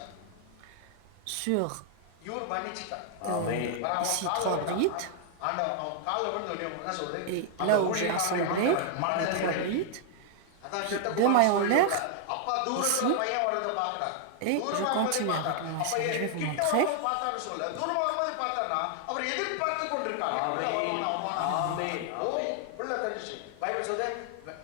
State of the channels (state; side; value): different; both; correlation 0.00